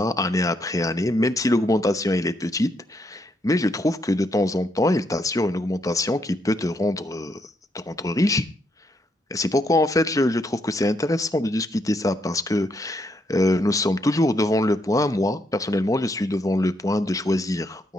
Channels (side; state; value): both; normal; correlation 0.76